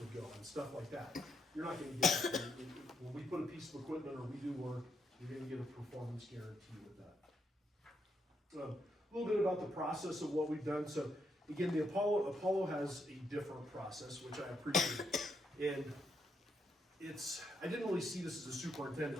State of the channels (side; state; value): both; normal; correlation 0.78